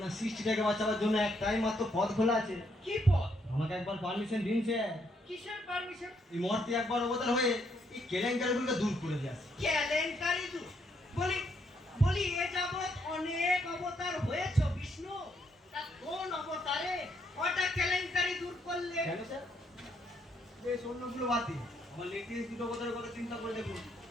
সৃষ্টিটাকে বাঁচাবার জন্য একটাই মাত্র পথ খোলা আছে। কি পথ? আমাকে একবার পারমিশন দিন স্যার। কিসের পারমিশন? এই মূর্তি একবার অবতার হয়ে এই কেলেঙ্কারিগুলোকে দূর করে দিয়ে আসে। কেলেঙ্কারি দূর? বলি বলি এ যাবৎ অনেক অবতার হয়েছে বিষ্ণু, তা কোন অবতারে কটা কেলেঙ্কারি দূর করলে? কেন স্যার? বেশ অন্যগুলো বাদ দিন, আমার লেটেস্ট দুটো অবতারের কথা চিন্তা করে দেখুন।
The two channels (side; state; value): both; normal; correlation 0.74